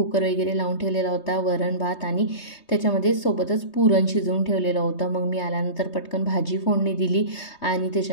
वगैरे लावून ठेवलेला होता, वरण भात, आणि त्याच्यामध्ये सोबतच पुरण शिजवून ठेवलेलं होतं. मग मी आल्यानंतर पटकन भाजी फोडणी दिली, आणि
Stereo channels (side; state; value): right; late; 3.2 ms